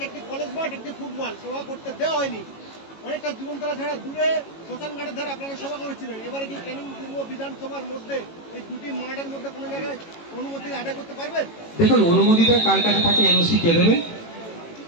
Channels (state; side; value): late; right; 18 ms